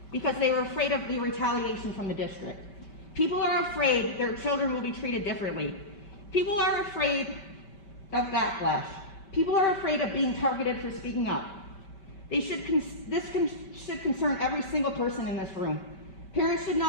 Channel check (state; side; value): late; right; 5.2 ms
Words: because they were afraid of the retaliation from the district. People are afraid their children will be treated differently. People are afraid of backlash. People are afraid of being targeted for speaking up. This should concern every single person in this room. Parents should